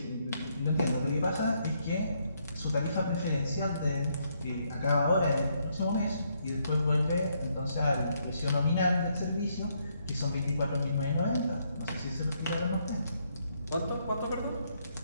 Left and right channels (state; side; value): inverted; both; correlation -0.74